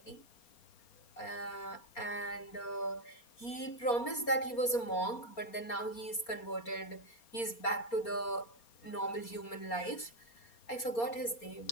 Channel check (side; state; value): right; late; 4.3 ms